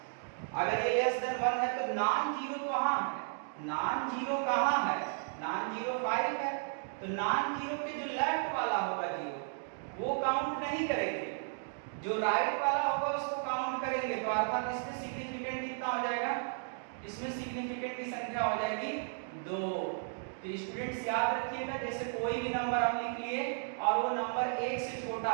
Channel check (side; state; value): left; silent; digital silence